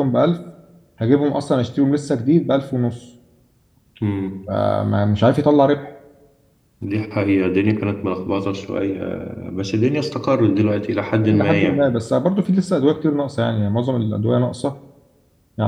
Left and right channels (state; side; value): identical; both; correlation 1.00